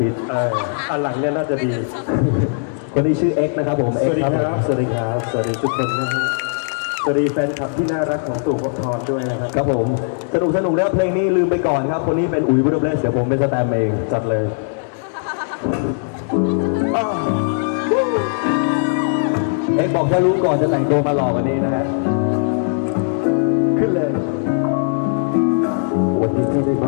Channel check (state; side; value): silent; right; digital silence